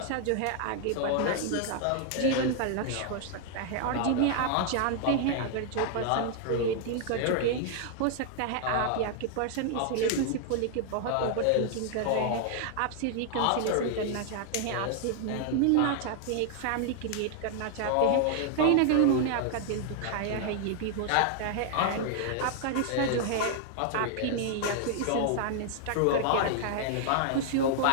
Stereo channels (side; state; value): both; different; correlation 0.00